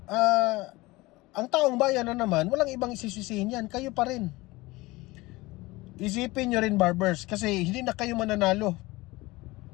ang taong bayan na naman, walang ibang isisisihin yan. Kayo pa rin. Isipin nyo rin, Barbers, kasi hindi na kayo mananalo.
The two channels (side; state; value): right; quieter; 21.1 dB